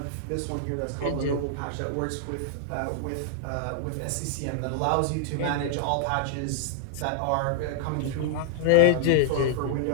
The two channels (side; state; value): both; different; correlation -0.01